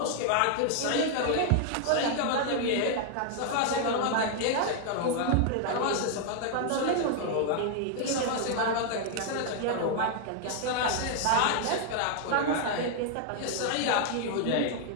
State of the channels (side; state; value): both; different; correlation 0.00